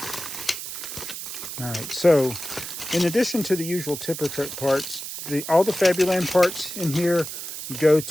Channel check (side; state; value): right; noise; hiss, 8 dB below the sound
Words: All right, so in addition to the usual tipper truck parts, all the Fabuland parts in here go